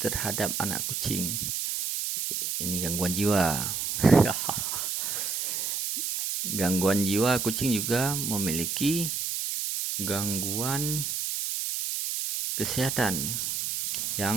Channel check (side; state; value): right; noise; hiss, 2 dB below the sound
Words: anak kucing. Ini gangguan jiwa. Gangguan jiwa kucing juga memiliki gangguan kesehatan